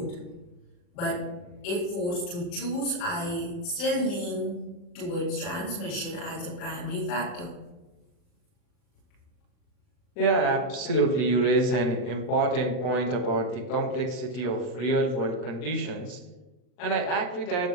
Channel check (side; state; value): right; late; 40 ms